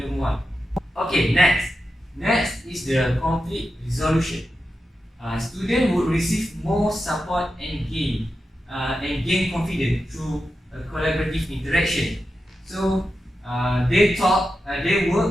one. Okay, next Next is the conflict resolution. Students would receive more support and gain confidence through a collaborative interaction. So they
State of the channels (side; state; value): both; normal; correlation 0.90